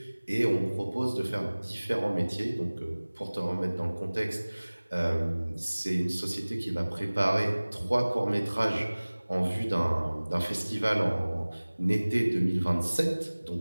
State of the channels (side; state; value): both; inverted; correlation -1.00